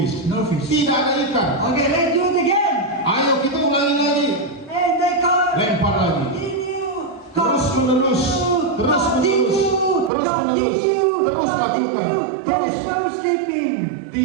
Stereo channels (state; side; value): drops out; left; at 10.1 s